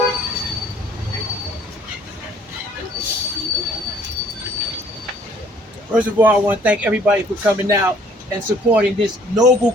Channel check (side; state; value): both; normal; correlation 0.58